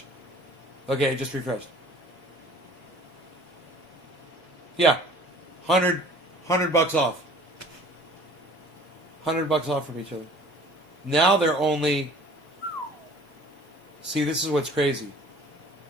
Okay, it just refreshed. Yeah, $100 off. $100 off from each other. Now they're only... See, this is what's crazy.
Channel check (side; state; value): both; normal; correlation 0.49